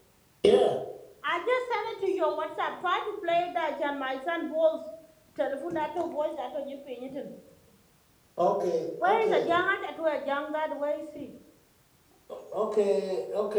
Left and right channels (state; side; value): identical; both; correlation 1.00